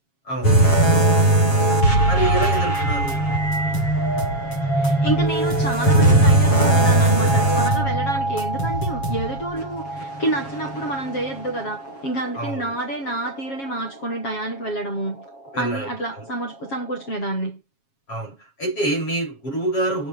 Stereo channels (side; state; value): right; late; 7.3 ms